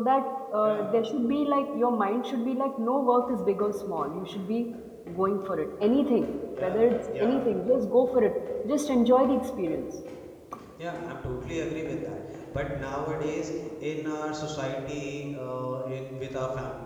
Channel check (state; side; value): identical; both; correlation 1.00